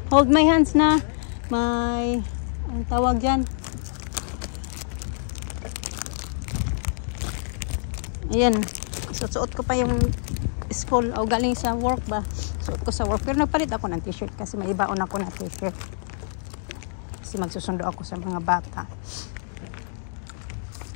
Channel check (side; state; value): right; silent; digital silence